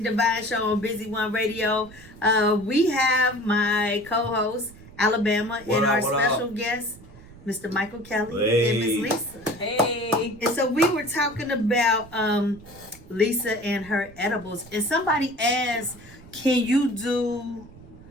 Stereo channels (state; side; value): noise; right; rumble, 21 dB below the sound